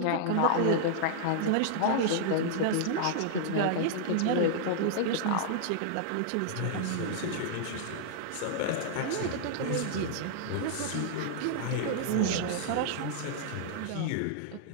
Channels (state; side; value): different; both; correlation -0.01